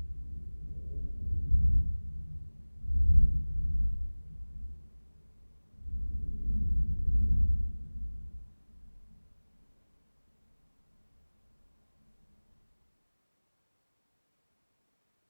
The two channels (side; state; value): both; inverted; correlation -1.00